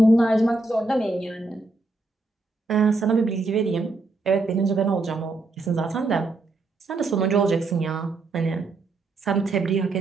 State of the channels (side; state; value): left; quieter; 3.3 dB